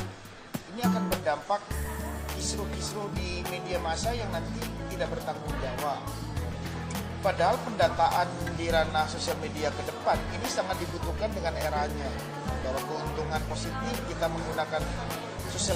ini akan berdampak kisruh-kisruh di media massa yang nanti tidak bertanggung jawab. Padahal pendataan di ranah sosial media ke depan ini sangat dibutuhkan dengan eranya. Bahwa keuntungan positif kita menggunakan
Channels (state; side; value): identical; both; correlation 1.00